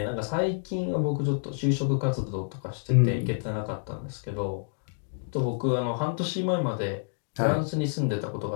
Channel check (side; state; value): right; silent; digital silence